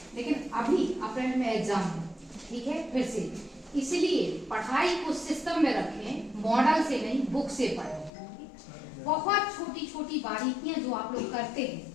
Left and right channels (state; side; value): drops out; right; at 8.1 s